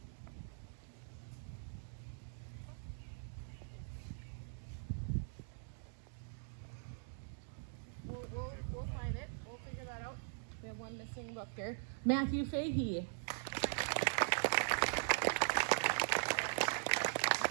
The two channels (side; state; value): left; silent; digital silence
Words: We'll find it. We'll figure that out. We have one missing book here. Matthew Fahey.